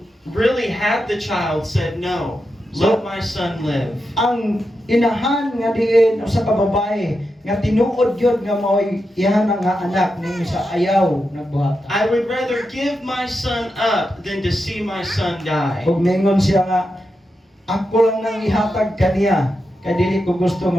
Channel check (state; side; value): normal; both; correlation 0.87